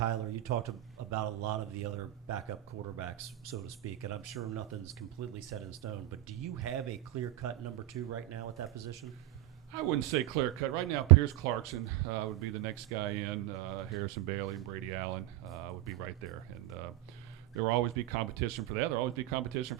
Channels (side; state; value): left; quieter; 15.3 dB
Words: you talked about a lot of the other backup quarterbacks, so to speak, and I'm sure nothing's completely set in stone, but do you have a clear-cut number 2 right now at that position? I wouldn't say clear cut. Right now, Pierce Clarkson would be the next guy in. Harrison Bailey and Brady Allen would be right there. And there will always be competition for that. There will always be competition